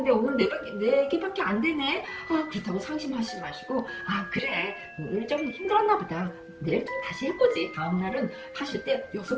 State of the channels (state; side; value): identical; both; correlation 1.00